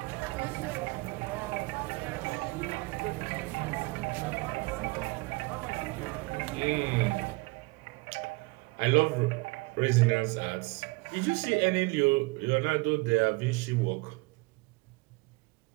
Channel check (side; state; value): left; quieter; 25.2 dB